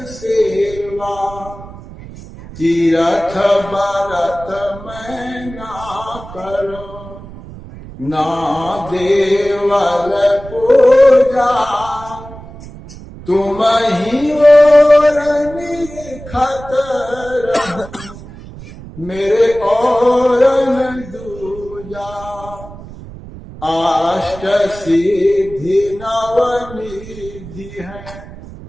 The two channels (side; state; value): right; noise; rumble, 16 dB below the sound